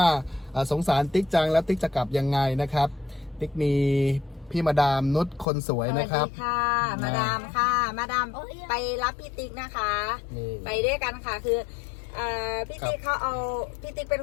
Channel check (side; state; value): right; drops out; at 5.5 s